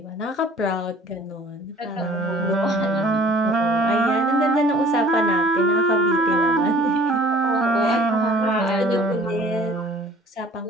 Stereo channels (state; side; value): normal; both; correlation 0.51